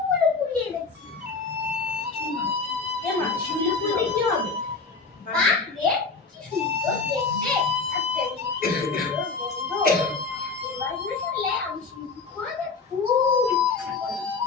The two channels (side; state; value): right; quieter; 4.4 dB